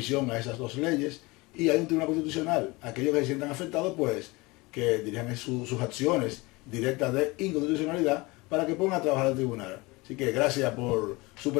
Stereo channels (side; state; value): right; quieter; 23.6 dB